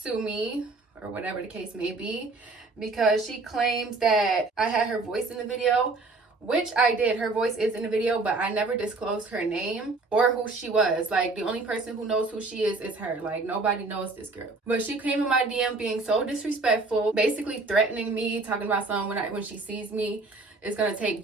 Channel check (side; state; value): left; quieter; 3.5 dB